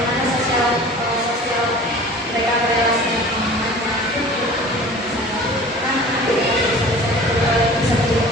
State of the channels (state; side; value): normal; both; correlation 0.43